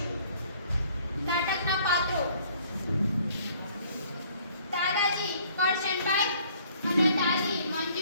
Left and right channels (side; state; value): both; inverted; correlation -0.59